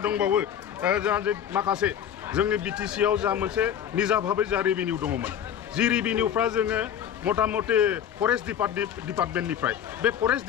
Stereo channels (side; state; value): right; quieter; 9.3 dB